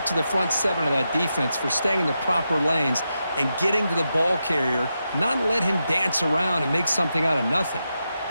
to the front 7 of that defense for staying in the proper lanes and getting to the ball carrier, not let him dance around and make something out of nothing.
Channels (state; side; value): inverted; both; correlation -0.87